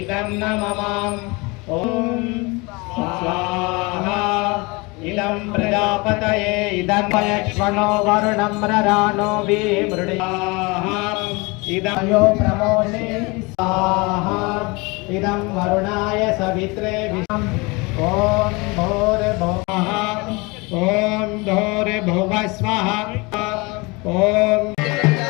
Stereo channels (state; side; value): quieter; right; 26.4 dB